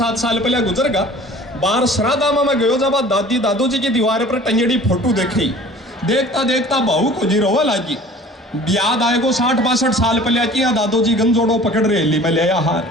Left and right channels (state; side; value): normal; both; correlation 0.46